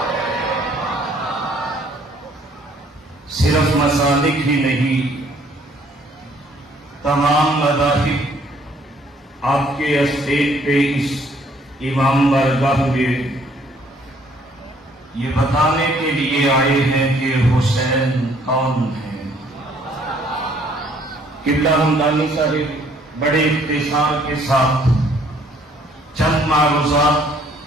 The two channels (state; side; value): normal; both; correlation 0.62